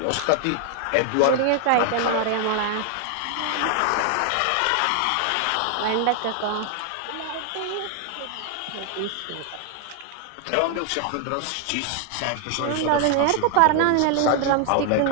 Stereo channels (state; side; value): different; both; correlation 0.00